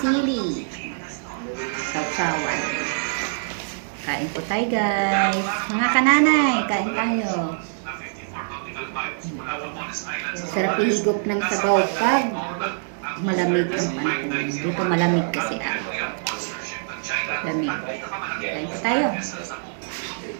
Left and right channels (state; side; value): silent; left; 59 dB below the other